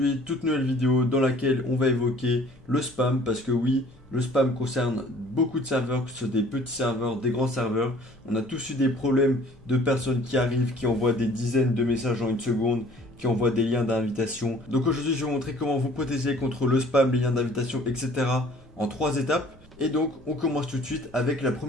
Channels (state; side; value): noise; left; rumble, 29 dB below the sound